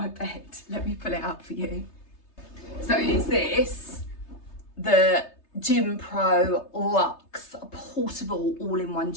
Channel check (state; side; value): late; right; 3.3 ms